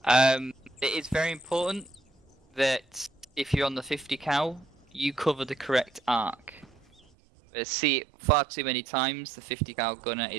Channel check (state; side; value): drops out; left; at 7.0 s